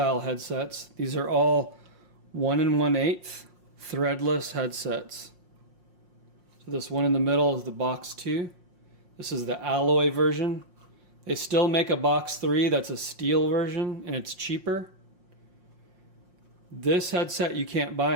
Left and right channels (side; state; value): left; late; 5.6 ms